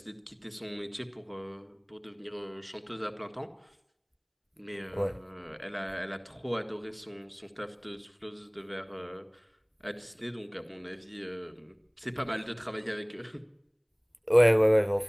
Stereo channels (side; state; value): both; identical; correlation 1.00